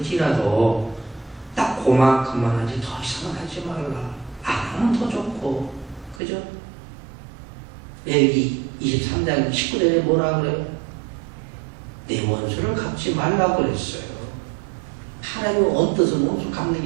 딱 그만큼만 하지 더 이상은 하지 말라. 안 하면 더 좋고. 그죠? 여기 23장 19절에 뭐라 그래요? 내 원수를 갚지 말라 그랬어요. 하나님은 언뜻은 원수 갚는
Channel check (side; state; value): left; drops out; at 6.2 s